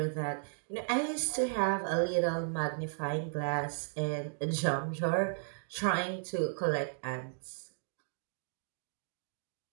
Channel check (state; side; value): silent; left; digital silence